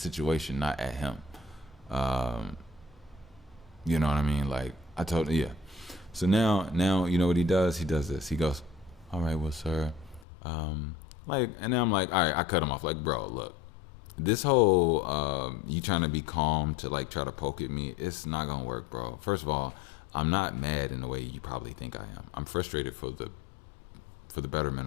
not at him. You know what I mean? Like I told him, yeah. So now you know what he does? He does this. He goes, all right, well, sir, and then I'm like, all right, I cut him off. Like, bro, look, this whole you trying to be calm to try to poke at me, it's not gonna work, bro. First of all, I'm not mad in the way you probably think I am. I'm frustrated for the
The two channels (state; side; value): drops out; right; at 10.2 s